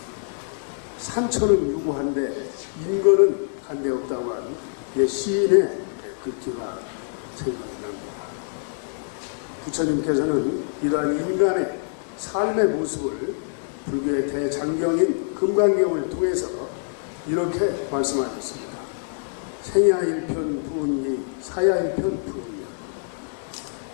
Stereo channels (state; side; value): silent; right; digital silence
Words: 산천은 유구한데 인거는 간데 없다고 한 시인의 글귀가 생각이 납니다. 부처님께서는 이러한 인간의 삶의 모습을 불교의 대장경인 금강경을 통해서 이렇게 말씀하셨습니다. 생야 일편 부은기, 사야 일편 부은냐.